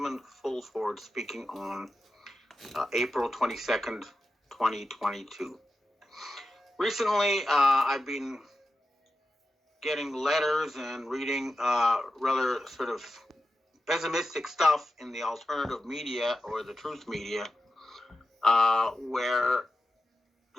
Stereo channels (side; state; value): both; normal; correlation 0.91